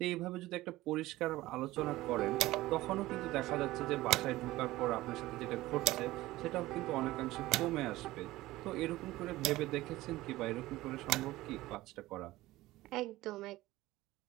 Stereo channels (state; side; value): quieter; left; 17.6 dB